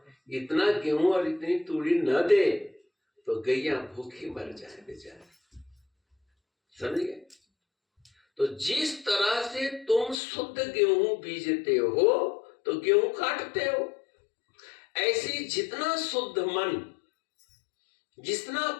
इतना गेहूं और इतनी तूड़ी न दे तो गैया भूखी मर जाए बेचारे, समझ गए? तो जिस तरह से तुम शुद्ध गेहूं बीजते हो तो गेहूं काटते हो, ऐसी जितना शुद्ध मन, जितना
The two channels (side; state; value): right; drops out; at 10.2 s